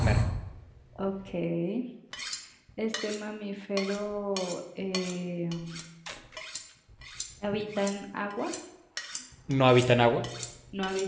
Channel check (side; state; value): both; identical; correlation 1.00